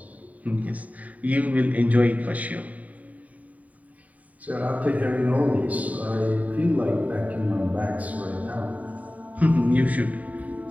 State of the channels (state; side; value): late; left; 0.071 ms